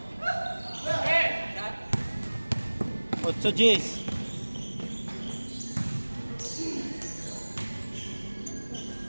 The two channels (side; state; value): both; inverted; correlation -1.00